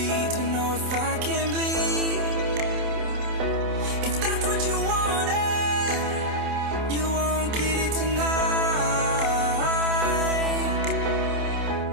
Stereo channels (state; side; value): late; left; 27 ms